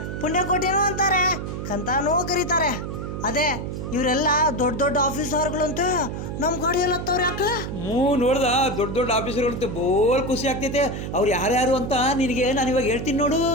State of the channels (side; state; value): right; noise; hum, 6 dB below the sound